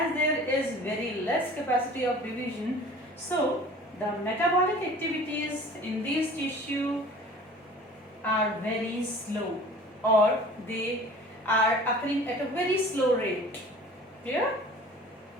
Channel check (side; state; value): both; normal; correlation 0.45